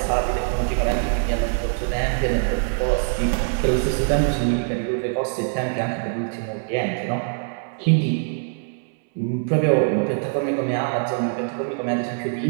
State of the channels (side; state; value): left; silent; 63 dB below the other